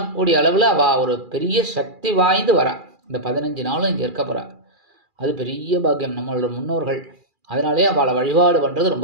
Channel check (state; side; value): late; left; 2.4 ms